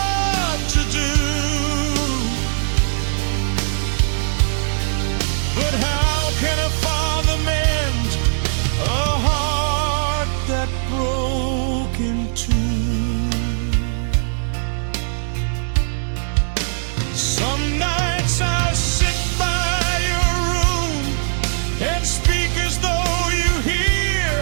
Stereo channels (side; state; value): left; silent; 66 dB below the other